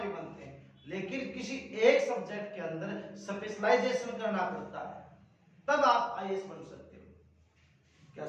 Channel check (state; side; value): identical; both; correlation 1.00